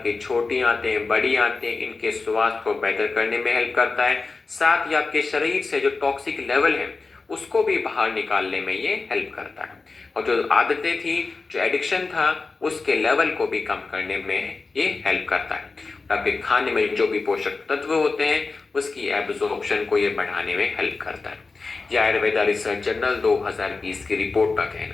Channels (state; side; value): quieter; right; 4.1 dB